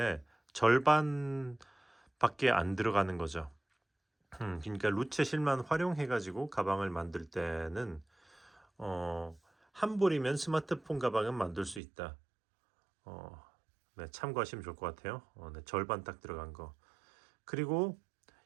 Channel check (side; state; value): left; drops out; at 11.8 s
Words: 절반 밖에 안 들어가는 거죠. 그러니까 루체 실만 활용해 가지고 가방을 만들 때는 한 볼이면 스마트폰 가방은 만들 수 있다. 네, 참고하시면 좋을 것 같아요. 네, 절반 딱 들어간 거. 그리고